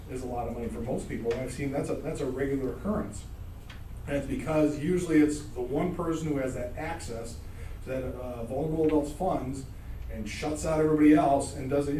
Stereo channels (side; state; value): both; identical; correlation 1.00